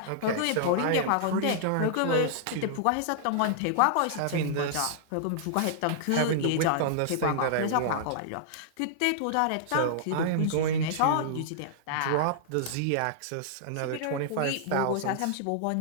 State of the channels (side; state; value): both; different; correlation -0.02